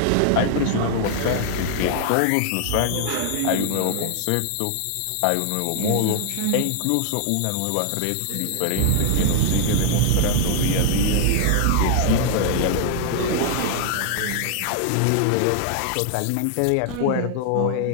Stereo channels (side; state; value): both; different; correlation -0.01